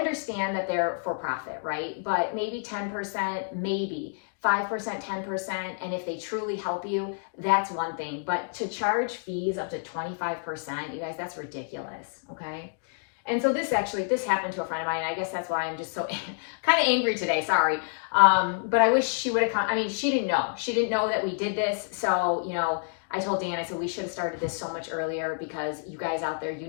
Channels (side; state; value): right; silent; digital silence